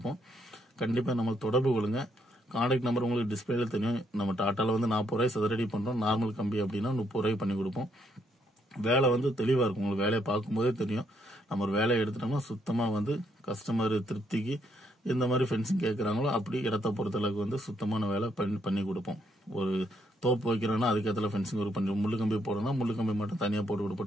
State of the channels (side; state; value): both; normal; correlation 0.74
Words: கண்டிப்பா நம்ம தொடர்பு கொள்ளுங்க. கான்டாக்ட் நம்பர் உங்களுக்கு டிஸ்பிளேல தெரியும். நம்ம டாட்டால வந்து 40 ரூபாய் சதுரடி பண்றோம். நார்மல் கம்பி அப்படின்னா 30 ரூபாய் பண்ணி கொடுப்போம். வேலை வந்து தெளிவா இருக்கும். உங்களுக்கு வேலையை பார்க்கும்போதே தெரியும். நம்ம ஒரு வேலையை எடுத்துட்டோம்னா சுத்தமா வந்து கஸ்டமர் திருப்திக்கு எந்த மாதிரி ஃபென்சிங் கேட்கறாங்களோ அப்படி இடத்த பொறுத்தளவுக்கு வந்து சுத்தமான வேலை பண்ணி கொடுப்போம். ஒரு தோப்பு வைக்கிறோம்னா அதுக்கேற்ற ஃபென்சிங் ஒரு பண்ணி முள்ளு கம்பி போடணும்னா முள்ளு கம்பி மட்டும் தனியா போட்டு